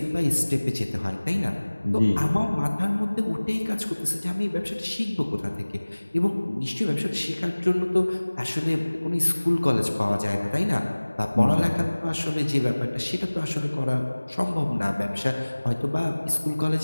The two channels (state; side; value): inverted; both; correlation -1.00